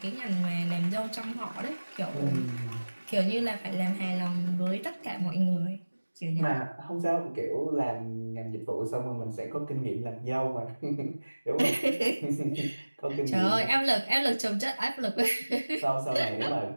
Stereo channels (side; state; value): both; inverted; correlation -1.00